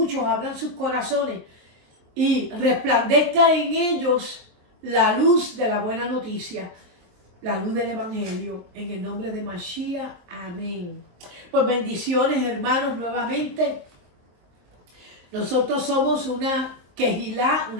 abran sus corazones y resplandezca en ellos la luz de la buena noticia, la luz del evangelio, en el nombre de Mashiach. Amén. Pues bendiciones, hermanos, nuevamente. Nosotros somos una Kehilá,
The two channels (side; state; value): left; late; 23 ms